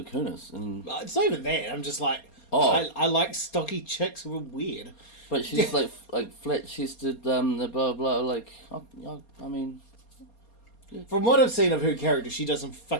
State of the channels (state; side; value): late; right; 4.3 ms